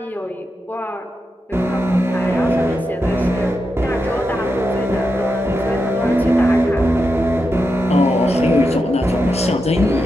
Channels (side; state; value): both; normal; correlation 0.87